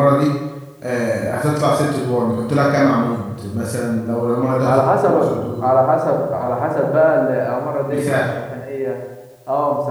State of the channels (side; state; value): both; identical; correlation 1.00